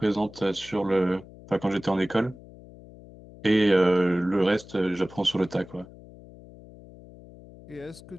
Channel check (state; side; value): noise; left; hum, 20 dB below the sound